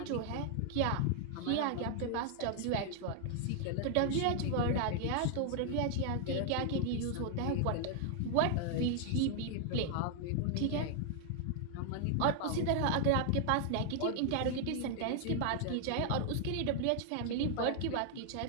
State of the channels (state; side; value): different; both; correlation 0.00